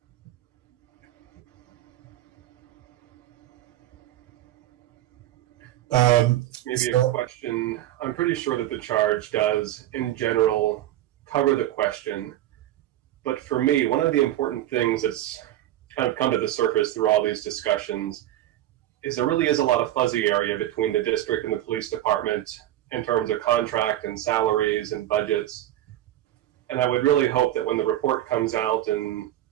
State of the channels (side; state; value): left; quieter; 13.5 dB